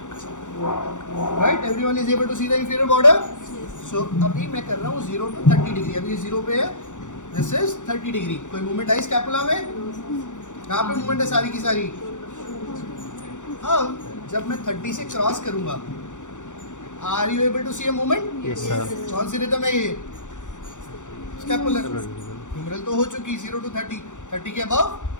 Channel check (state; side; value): late; right; 0.85 ms